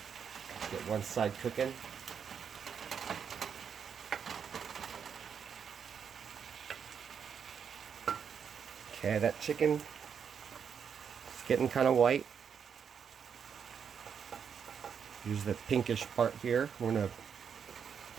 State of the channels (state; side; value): quieter; left; 7.2 dB